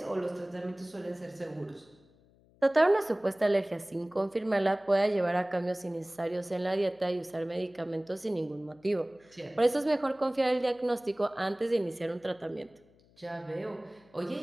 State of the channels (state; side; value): noise; left; hum, 30 dB below the sound